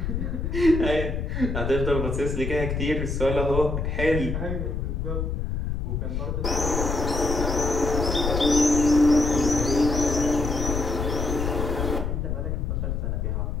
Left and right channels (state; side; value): noise; left; rumble, 2 dB below the sound